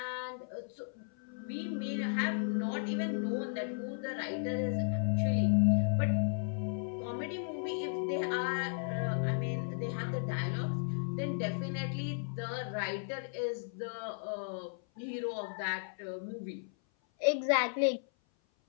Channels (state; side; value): silent; right; 55 dB below the other